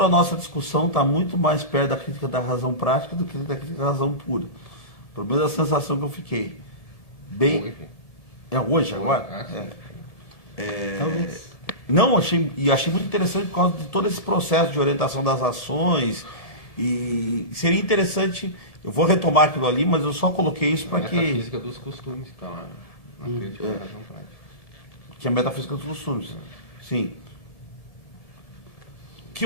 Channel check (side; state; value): left; late; 9.2 ms